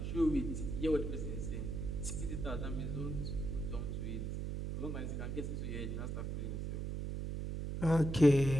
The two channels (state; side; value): noise; right; hum, 3 dB below the sound